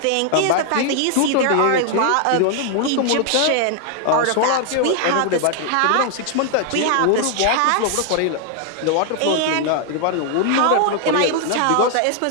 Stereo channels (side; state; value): both; different; correlation 0.00